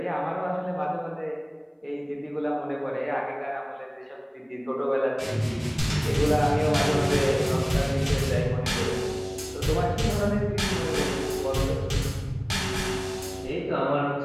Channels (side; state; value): both; identical; correlation 1.00